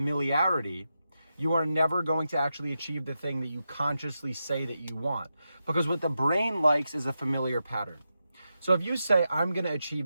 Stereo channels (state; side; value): inverted; both; correlation -0.88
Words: you are never going to actually achieve the thing that you consciously say that you want. Because what the brain likes is a familiar pattern. So if you say, I'm going to